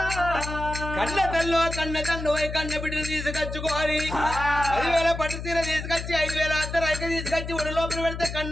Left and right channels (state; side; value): noise; left; hum, 7 dB below the sound